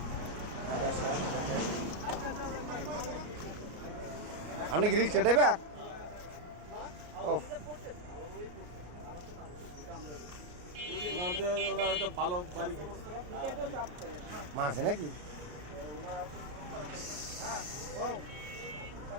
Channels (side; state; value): left; late; 33 ms